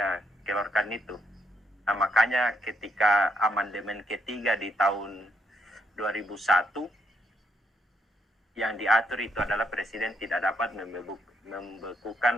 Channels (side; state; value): both; normal; correlation 0.74